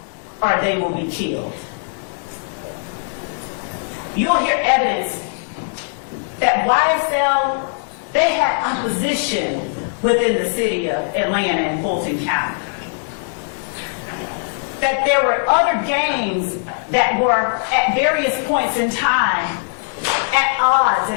or they will be killed. You'll hear evidence that YSL, they had opposition within the city of Atlanta and Fulton County. that there were other gangs that were at various points in time at odds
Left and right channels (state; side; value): silent; right; 64 dB below the other